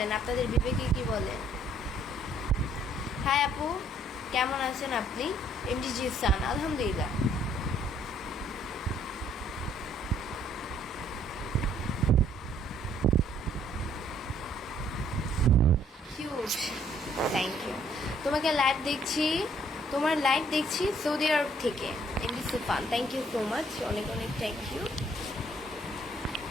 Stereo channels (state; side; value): normal; both; correlation 0.63